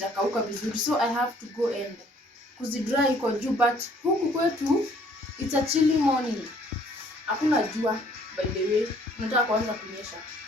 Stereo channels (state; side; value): normal; both; correlation 0.60